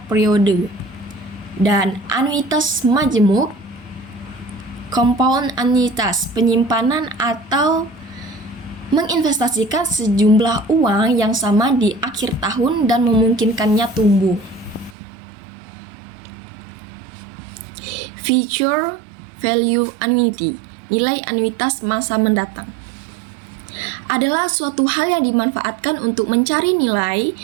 periode, dan anuitas majemuk, compound annuitas, penyimpanan atau menginvestasikan sejumlah uang yang sama di akhir tahun dan memungkinkannya tumbuh. Future value annuity, nilai anuitas masa mendatang, adalah suatu hal yang dimanfaatkan untuk mencari nilai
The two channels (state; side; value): drops out; left; at 15.0 s